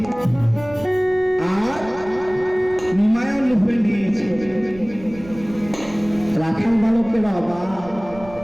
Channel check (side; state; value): right; noise; rumble, 18 dB below the sound